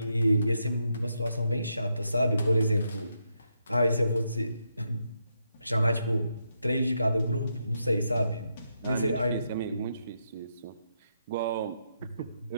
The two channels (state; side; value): inverted; both; correlation -0.81